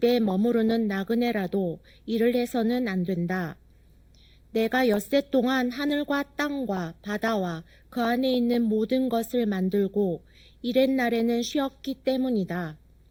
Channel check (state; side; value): identical; both; correlation 1.00